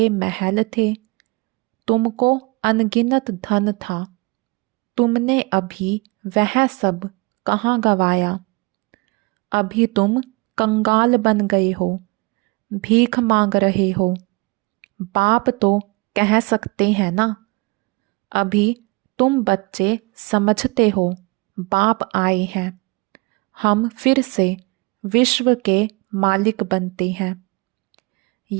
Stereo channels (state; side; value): quieter; left; 26.8 dB